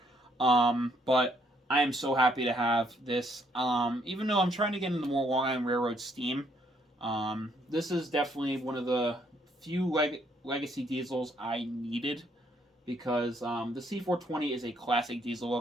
But I am so happy to have this. Even though I'm trying to get into more Long Island Railroad steam, this is definitely one of the few legacy diesels I needed, because the C420 is a classic diesel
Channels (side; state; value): both; normal; correlation 0.70